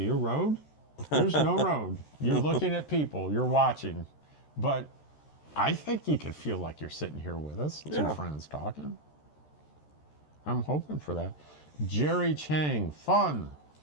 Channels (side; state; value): right; late; 13 ms